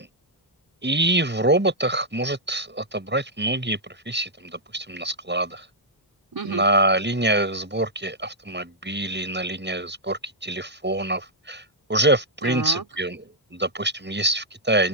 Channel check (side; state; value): both; normal; correlation -0.07